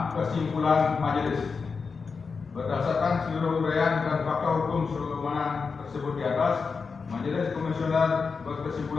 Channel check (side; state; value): right; quieter; 5.0 dB